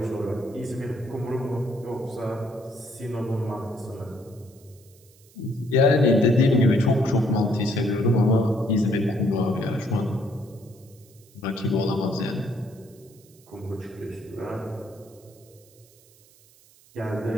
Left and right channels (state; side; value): noise; right; hiss, 27 dB below the sound